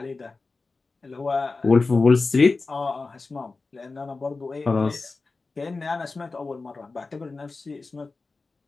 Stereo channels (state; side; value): quieter; right; 3.8 dB